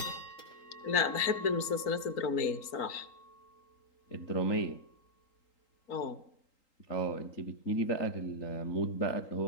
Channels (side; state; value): right; late; 3.8 ms